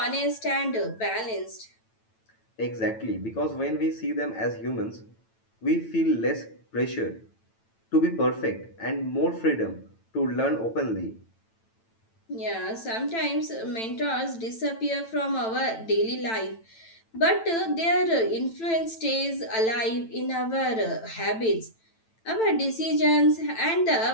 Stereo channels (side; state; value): right; late; 9.0 ms